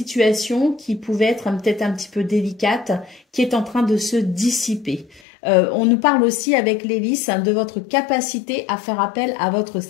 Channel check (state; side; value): drops out; right; at 5.2 s